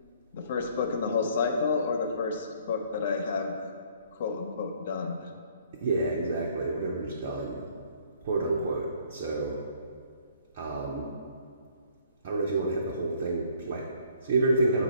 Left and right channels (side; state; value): both; inverted; correlation -0.61